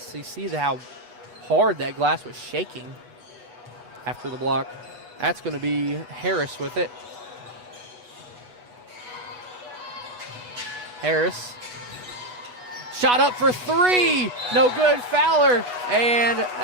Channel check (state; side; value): late; left; 8.2 ms